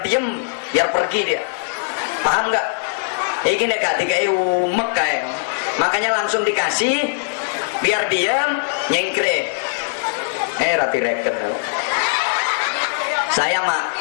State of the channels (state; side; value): silent; right; digital silence